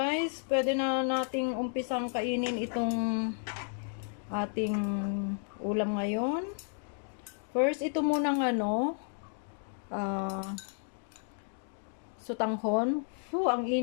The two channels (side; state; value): right; silent; 56 dB below the other